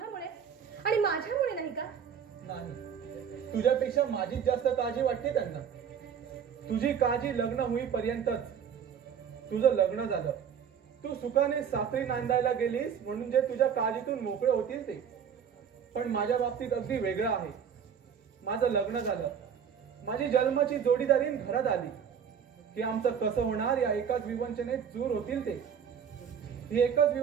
आणि माझ्यामुळे नाही का? नाही, तुझ्यापेक्षा माझीच जास्त काळजी वाटते त्यांना. तुझी काळजी लग्न होईपर्यंतच. तुझं लग्न झालं, तू सुखाने सासरी नांदायला गेलीस म्हणून जे तुझ्या काळजीतून मोकळे होतील ते. पण माझ्या बाबतीत अगदी वेगळं आहे. माझं लग्न झालं, माझी जन्माची जोडीदारीन घरात आली की आमचं कसं होणार या एकाच विवंचनेत दूर होतील ते. ही एकच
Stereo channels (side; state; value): left; quieter; 7.7 dB